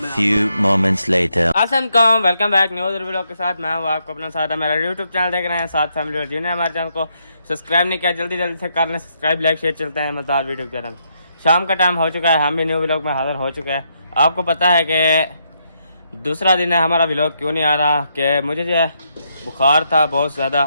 few moments later. अस्सलाम, वेलकम बैक न्यू वीडियो के साथ। मैं हूँ आपको अपना साथ, मेरा यूट्यूब चैनल देख रहे हैं साथ फैमिली और जिन्हें हमारे चैनल को सब्सक्राइब नहीं किया जल्दी जल्दी से कर लें सब्सक्राइब, लाइक शेयर। चलते हैं मज़ेदार वीडियो की तरफ। शाम का टाइम हो चुका है, हम भी न्यू व्लॉग में हाजिर हो चुके हैं। आपको पता है कि दूसरा दिन है हमारा व्लॉग क्यों नहीं आ रहा कि मुझे जो है बुखार था बहुत ज़्यादा।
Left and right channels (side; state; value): both; inverted; correlation -0.77